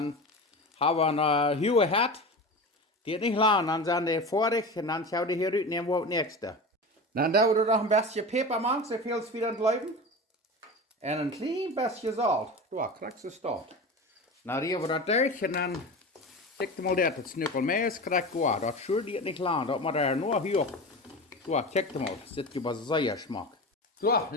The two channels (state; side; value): normal; both; correlation 0.29